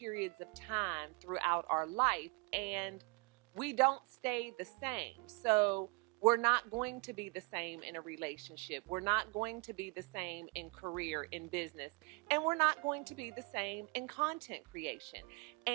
of time throughout our life, and we don't stay the same. So we're not going to be the same in a relationship. We're not going to be the same in career, in business, and we're not going to be the same in content creation.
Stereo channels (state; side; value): quieter; left; 29.9 dB